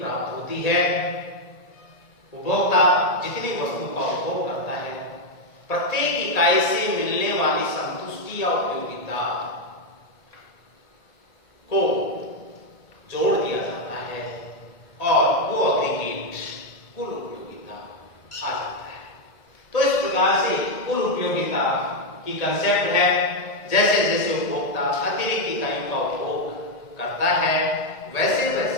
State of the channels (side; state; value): right; late; 1.8 ms